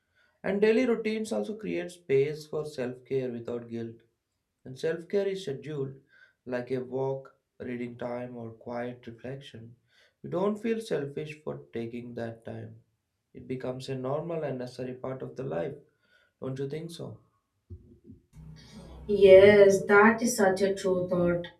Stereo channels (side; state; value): both; identical; correlation 1.00